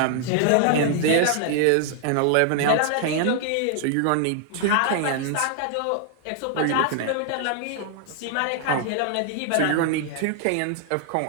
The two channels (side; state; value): both; different; correlation 0.00